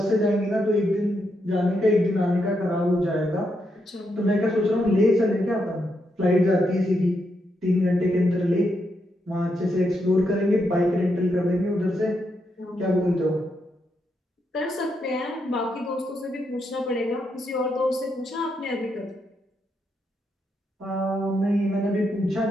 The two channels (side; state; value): both; normal; correlation 0.81